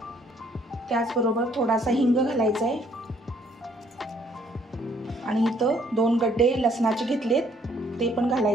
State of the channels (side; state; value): both; normal; correlation 0.64